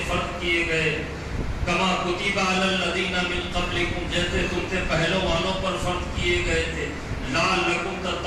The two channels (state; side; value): identical; both; correlation 1.00